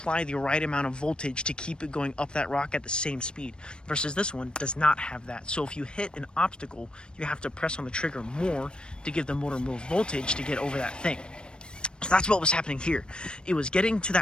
the right amount of voltage to keep it going up that rock at the same speed. Versus this one does not have that. So if you hit an obstacle, you have to press on the trigger more to give the motor more voltage to get over that thing. So that's what was happening here. It was getting to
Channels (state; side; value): late; right; 0.053 ms